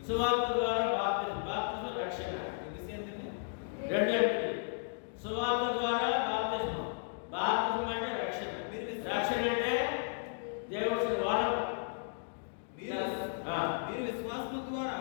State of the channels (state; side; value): silent; right; digital silence